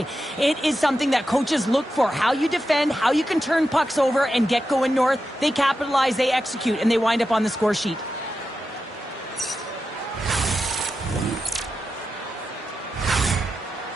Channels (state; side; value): normal; both; correlation 0.90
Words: It is something that coaches look for. How you defend, how you can turn pucks over and get going north. They capitalize, they execute, and they wind up on the score sheet.